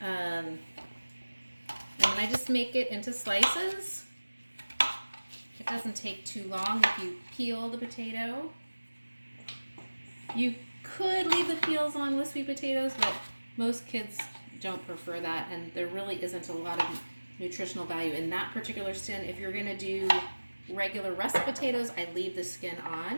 and then I just make it into slices. It doesn't take too long if you peel the potato. You could leave the peels on with sweet potatoes, but most kids don't prefer that, and there really isn't a lot of nutritional value in that particular skin. If you're going to do regular russet potatoes, I leave the skin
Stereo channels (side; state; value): both; inverted; correlation -1.00